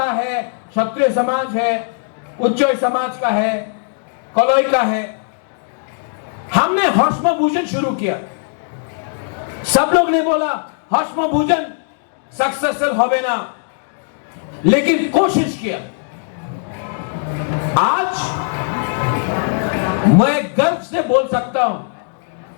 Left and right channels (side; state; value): right; silent; digital silence